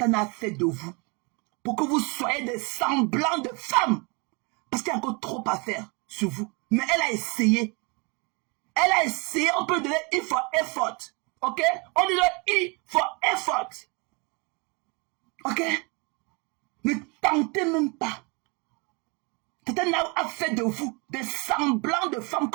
a fait de vous. Pour que vous soyez des semblants de femmes. Parce qu'il y a encore trop à faire sur vous. Mais elle a essayé. Elle a essayé, on peut donner I for effort. Ok? On dit I for effort. Ok? Ne tentez même pas. Tatana a fait de vous des semblants de femmes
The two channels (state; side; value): quieter; left; 30.5 dB